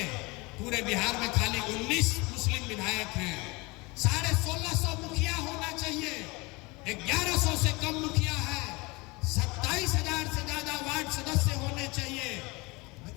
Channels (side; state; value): right; quieter; 25.4 dB